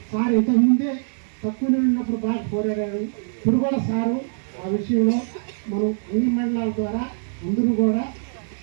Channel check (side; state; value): left; silent; digital silence